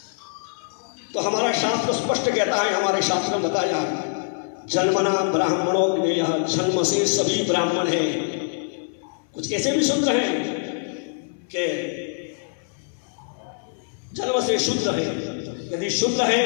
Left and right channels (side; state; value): right; silent; 60 dB below the other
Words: तो हमारा शास्त्र स्पष्ट कहता है, हमारे शास्त्र में बताया जन्मना ब्राह्मणों ने, यह जन्म से सभी ब्राह्मण हैं। कुछ ऐसे भी शूद्र हैं कि जन्म से शूद्र है। यदि शूद्र है